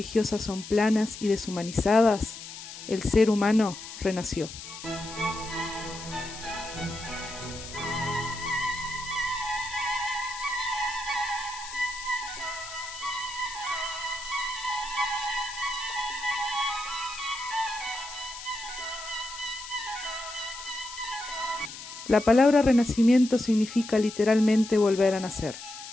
son planas y deshumanizadas, el ser humano renació. La palabra renacimiento significa literalmente volver a nacer,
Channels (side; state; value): left; noise; hiss, 12 dB below the sound